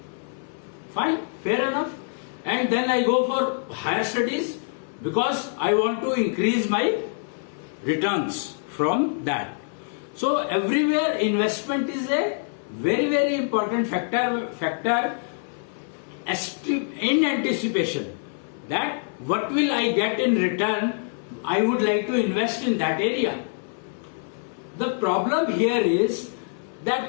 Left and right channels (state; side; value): silent; right; 59 dB below the other